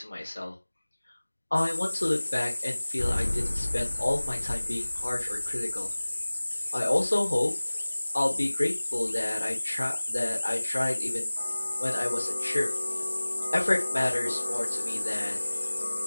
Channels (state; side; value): inverted; both; correlation -1.00